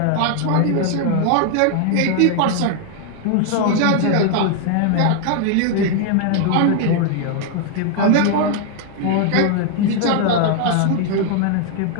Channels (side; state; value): both; different; correlation 0.00